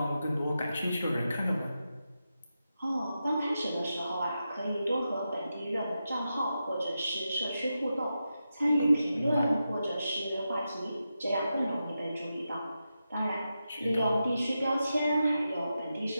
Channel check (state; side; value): inverted; both; correlation -0.89